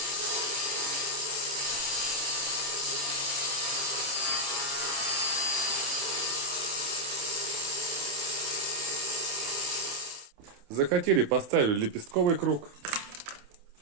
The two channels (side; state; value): left; late; 28 ms